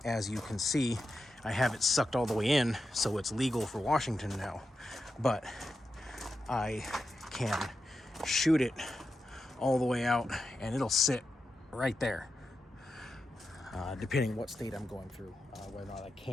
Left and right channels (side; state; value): both; normal; correlation 0.89